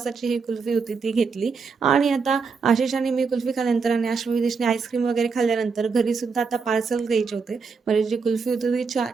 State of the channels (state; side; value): quieter; left; 5.1 dB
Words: ही कुल्फी होती ती घेतली आणि आता आशिष आणि मी कुल्फी खाल्ल्यानंतर आणि आश्वी विदेशने आईस्क्रीम वगैरे खाल्ल्यानंतर घरी सुद्धा आता पार्सल द्यायचे होते. म्हणजे जी कुल्फी होती ती